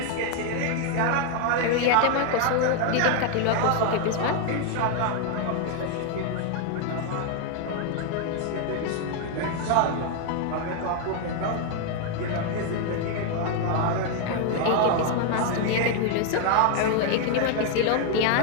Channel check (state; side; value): different; both; correlation 0.00